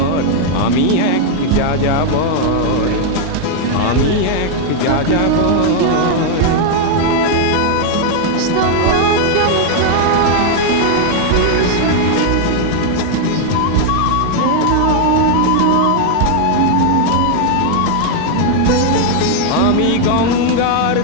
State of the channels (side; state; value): both; different; correlation 0.00